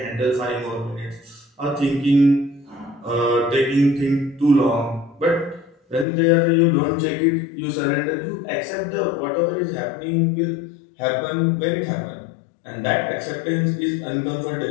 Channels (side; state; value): right; drops out; at 6.1 s